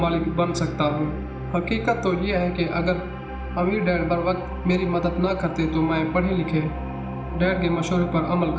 बन सकता हूँ। हकीकत तो ये है कि अगर अमीर डैड बर वक्त मेरी मदद ना करते तो मैं पढ़े लिखे डैड के मशवरे पर अमल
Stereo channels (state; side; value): identical; both; correlation 1.00